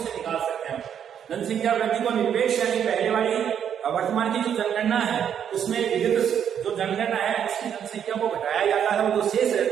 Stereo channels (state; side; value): quieter; left; 8.7 dB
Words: से निकाल सकते हैं। जनसंख्या वृद्धि को निरपेक्ष यानी पहले वाली वर्तमान की जो जनगणना है उसमें विगत जो जनगणना है उसकी जनसंख्या को घटाया जाता है, वो जो शेष